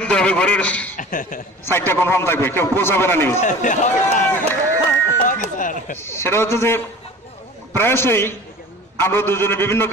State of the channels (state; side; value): normal; both; correlation 0.41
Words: দিতে হবে, ঘরের সাইডটা কনফার্ম থাকবে, কেউ পৌঁছাবে না নিউজ। সেটা হচ্ছে যে প্রায়শই আমরা দুজনে বিভিন্ন